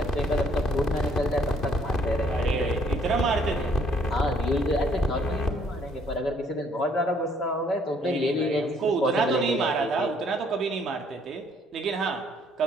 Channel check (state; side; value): normal; both; correlation 0.64